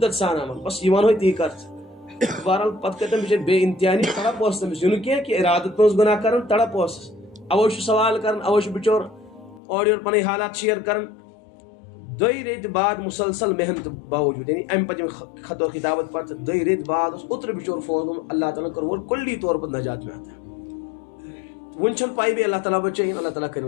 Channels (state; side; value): drops out; right; at 9.6 s